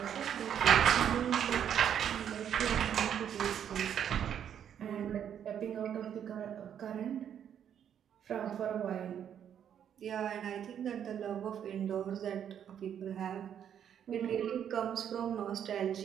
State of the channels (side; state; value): left; quieter; 9.1 dB